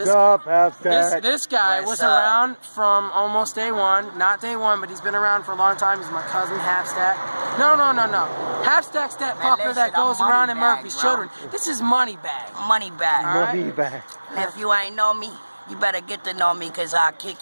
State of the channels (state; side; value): inverted; both; correlation -1.00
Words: up, Halfstack? this guy What's was up? around from almost day one. Not day one, but he's been around for a long time. He's my cousin Halfstack. No. Halfstack's that Man, fucker listen, that goes I'm around in Moneybag, Murphy's bro. Children. This is Moneybag. Money back. All right. Money back. If you ain't know me, you better get to know me, cause I'll kick